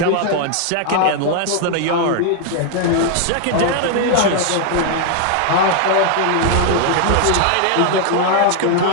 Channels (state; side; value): different; both; correlation 0.00